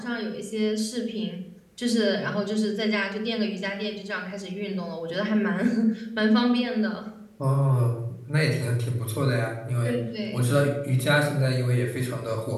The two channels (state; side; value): identical; both; correlation 1.00